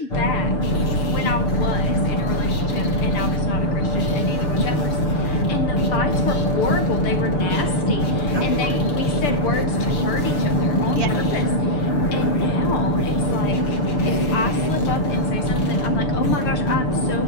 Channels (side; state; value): right; late; 6.8 ms